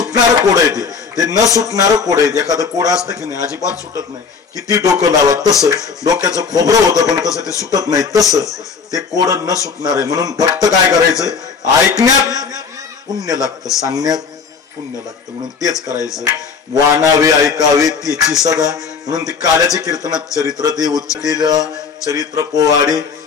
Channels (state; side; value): quieter; right; 5.6 dB